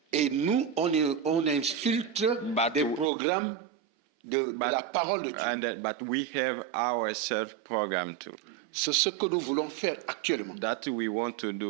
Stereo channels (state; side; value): drops out; left; at 3.1 s